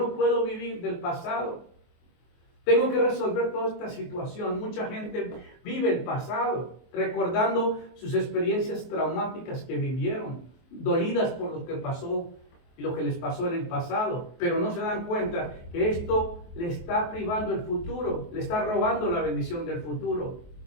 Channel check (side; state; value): right; late; 23 ms